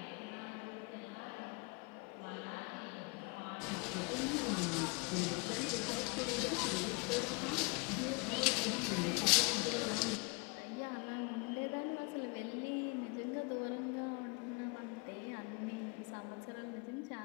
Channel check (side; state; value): right; quieter; 30.4 dB